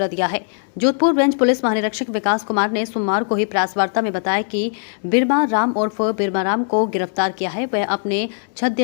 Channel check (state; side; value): silent; right; digital silence